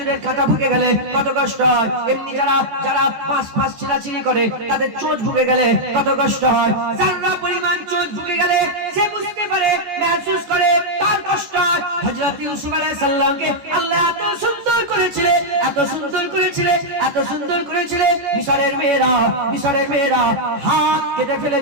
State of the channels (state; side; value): late; left; 14 ms